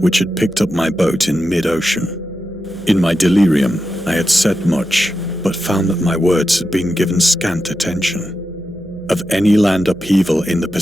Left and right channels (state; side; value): noise; right; hum, 22 dB below the sound